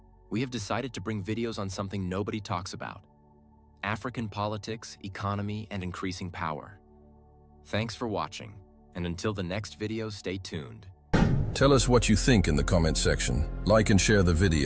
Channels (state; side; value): identical; both; correlation 1.00